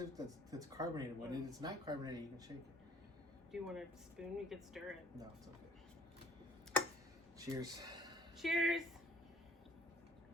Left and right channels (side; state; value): both; normal; correlation 0.54